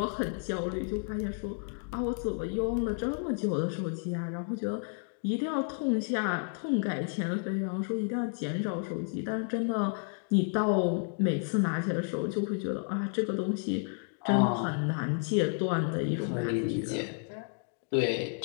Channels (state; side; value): silent; right; 57 dB below the other